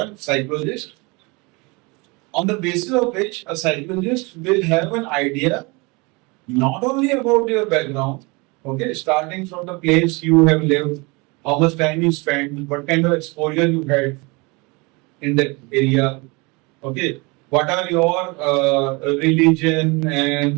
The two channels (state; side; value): quieter; left; 27.3 dB